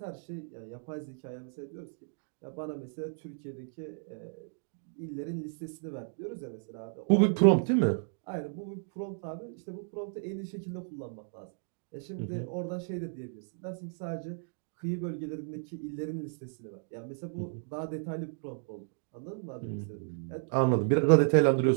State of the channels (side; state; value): left; silent; digital silence